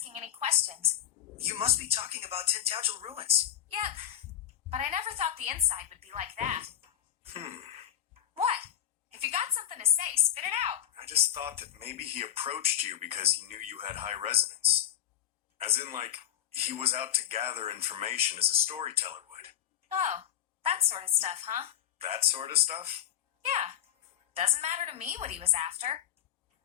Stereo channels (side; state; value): right; quieter; 11.3 dB